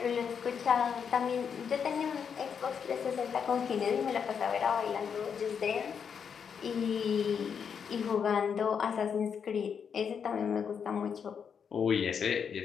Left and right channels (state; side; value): quieter; right; 7.0 dB